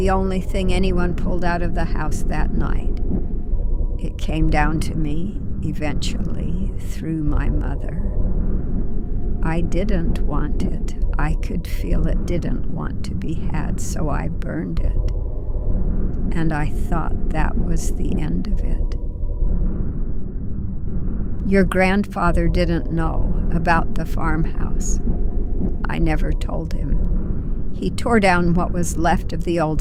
only thing anyone pulled out of the house that night. It came down to me, eventually, through my mother. I didn't want it. I could feel it didn't want to be had, so I burned it. And I thought that was the end of it. Your grandfather didn't know about the farmhouse. I never told him. He tore down what was left of the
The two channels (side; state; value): both; identical; correlation 1.00